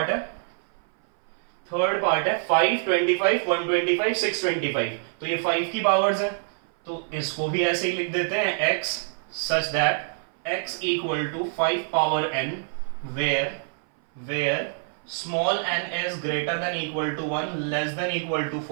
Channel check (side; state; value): left; silent; 58 dB below the other